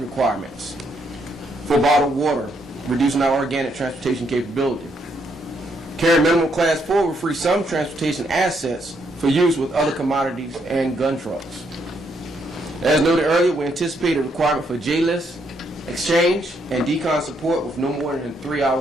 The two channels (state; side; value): normal; both; correlation 0.74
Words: requirements for bottled water, reducing our organic transportation capability. Carrying minimum Class 4 will free some transportation assets for use with other commodities and gun trucks. As noted earlier, we anticipate a requirement for J-list, exchange, and decon support with no more than